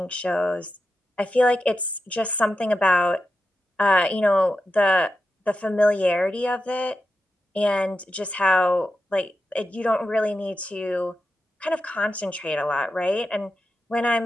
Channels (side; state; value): both; normal; correlation 0.89